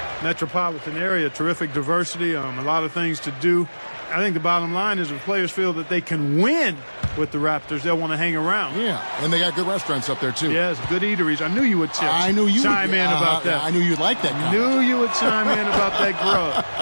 metropolitan area, terrific diversity, a lot of things to do. I think the bottom line is if players feel that they can win with the Raptors, they'll want to hang around. Yeah, and they got good restaurants up there, too. Yes, good eateries. I knew you would chime in about that. I knew you'd like that comment. Knew you would chime in about that grub.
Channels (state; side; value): inverted; both; correlation -1.00